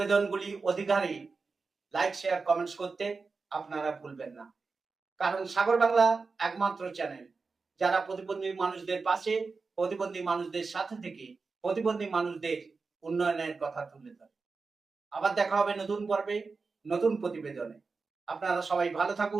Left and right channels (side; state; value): left; quieter; 4.4 dB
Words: অধিকারে লাইক, শেয়ার, কমেন্টস করতে আপনারা ভুলবেন না। কারণ সাগর বাংলা একমাত্র চ্যানেল যারা প্রতিবন্ধী মানুষদের পাশে, প্রতিবন্ধী মানুষদের সাথে থেকে প্রতিবন্ধী মানুষদের উন্নয়নের কথা তুলে ধরে। আবার দেখা হবে নতুন পর্বে, নতুন প্রতিবেদনে। আপনারা সবাই ভালো